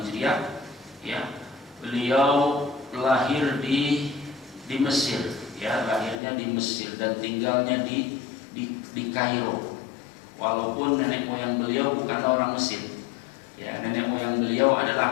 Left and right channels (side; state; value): right; drops out; at 6.2 s